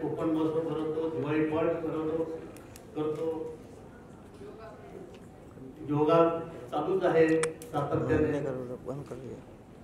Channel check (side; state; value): both; identical; correlation 1.00